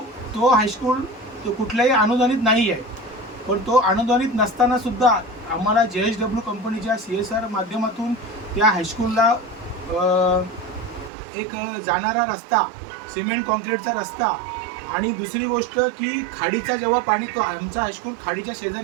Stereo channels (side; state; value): left; drops out; at 11.1 s